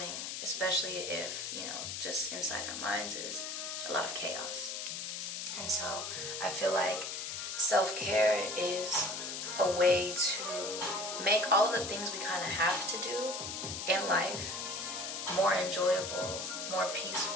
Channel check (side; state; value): left; noise; hiss, 5 dB below the sound